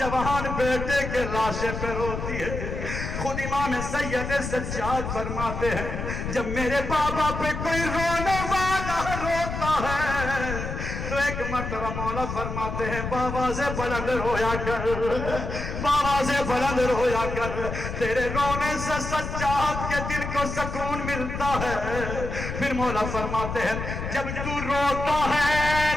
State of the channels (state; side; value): noise; left; rumble, 5 dB below the sound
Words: بیٹے کے لاشے پہ روتی ہے۔ خود امام سید سجاد فرماتے ہیں جب میرے بابا پہ کوئی رونے والا روتا ہے تو ایک مرتبہ مولا فرماتے ہیں بابا سے بلند رویا کر، بابا سے بلند رویا کر، تیرے رونے سے سجاد کے دل کو سکون ملتا ہے۔ پھر مولا فرماتے ہیں جب تو روتا ہے